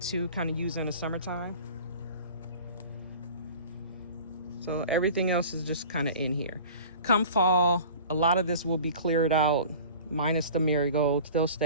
to kind of use in the summertime. So everything else is just kind of in here. Come fall, a lot of this will be cleared out, minus the marigolds. They'll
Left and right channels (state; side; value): inverted; both; correlation -0.42